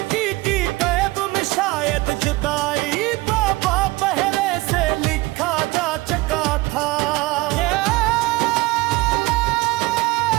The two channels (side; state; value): left; quieter; 20.9 dB